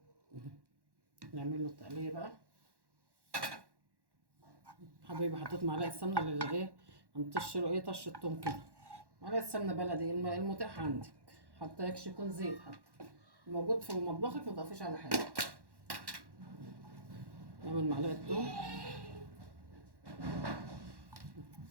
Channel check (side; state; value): left; late; 1.1 ms